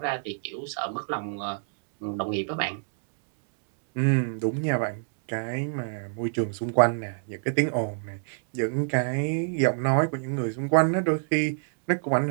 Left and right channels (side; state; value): left; silent; digital silence